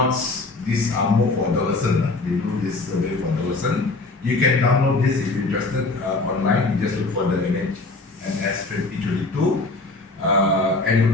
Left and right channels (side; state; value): right; quieter; 3.4 dB